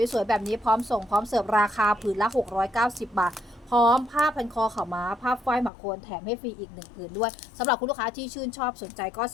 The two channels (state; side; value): drops out; right; at 5.7 s